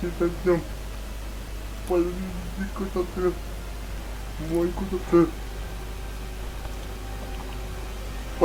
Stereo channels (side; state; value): both; identical; correlation 1.00